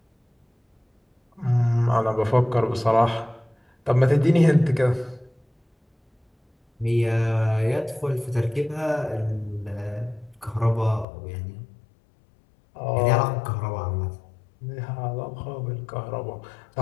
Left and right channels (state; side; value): drops out; right; at 11.1 s